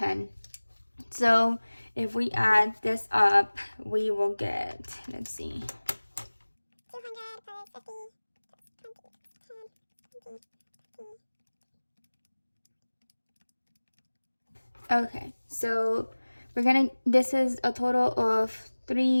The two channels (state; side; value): inverted; both; correlation -1.00